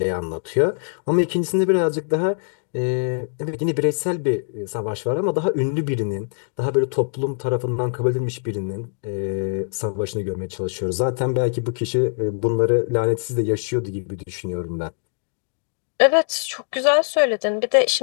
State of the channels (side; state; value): right; silent; digital silence